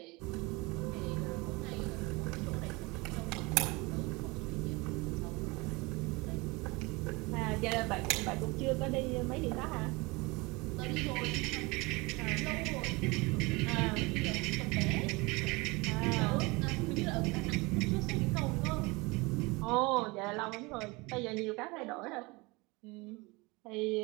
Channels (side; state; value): left; quieter; 25.0 dB